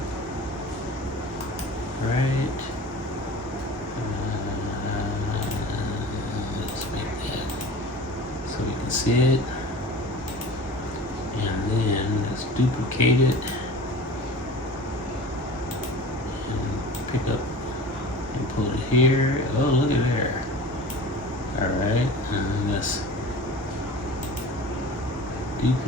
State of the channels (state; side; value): normal; both; correlation 0.38